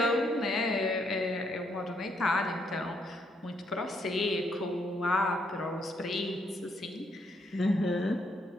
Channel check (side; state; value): both; normal; correlation 0.74